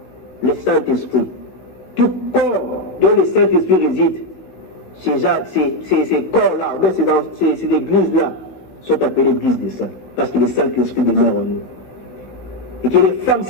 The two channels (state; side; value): late; right; 16 ms